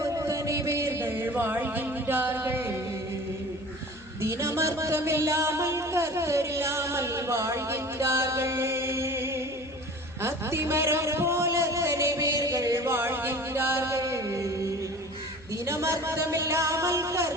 எத்தனை பேர்கள் வாழ்கின்றார்கள். தினமர்த்தமில்லாமல் கர்த்தரில்லாமல் வாழ்கின்றார்கள். அத்திமரம் போல எத்தனை பேர்கள் வாழ்கின்றார்கள். தினமர்த்தமில்லாமல்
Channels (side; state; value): left; noise; hum, 24 dB below the sound